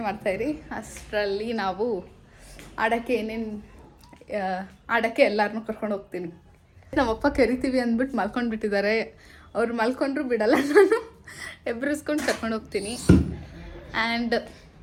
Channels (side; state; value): both; identical; correlation 1.00